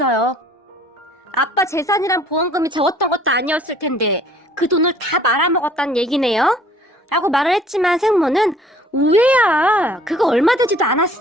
아빠 재산이랑 보험금이 적었던 것도 아니었을 텐데 그 돈을 다 말아먹었다는 얘기네요? 라고 말을 했지만 생모는 우회야, 그거 얼마 되지도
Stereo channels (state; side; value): normal; both; correlation 0.55